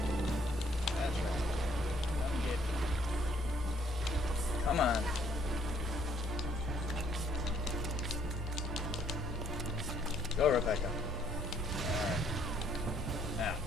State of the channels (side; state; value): both; normal; correlation 0.65